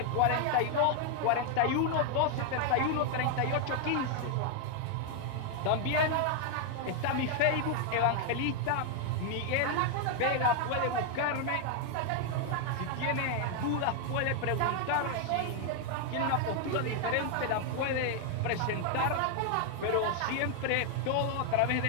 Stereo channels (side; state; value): both; different; correlation 0.00